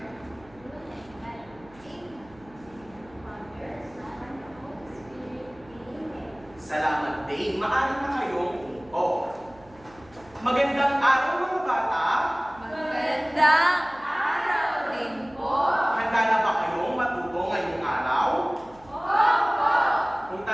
Salamat, Dave. Maaari na kayong umupo. Magandang araw, mga bata. Magandang araw din po. Handa na ba kayong matuto ngayong araw? Opo. Kung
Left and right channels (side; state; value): right; noise; hum, 25 dB below the sound